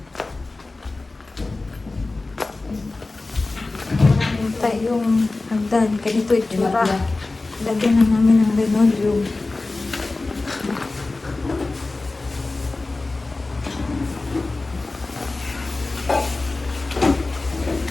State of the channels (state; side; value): quieter; right; 3.3 dB